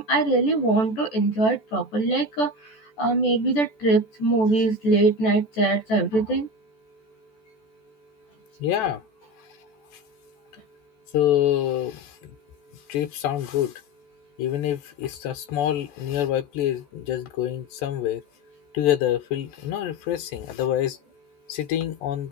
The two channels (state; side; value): late; right; 14 ms